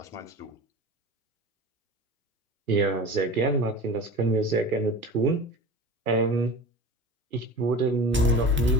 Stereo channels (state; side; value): normal; both; correlation 0.35